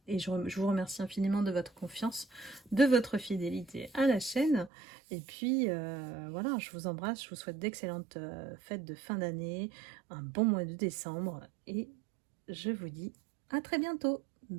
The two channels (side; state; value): left; drops out; at 4.7 s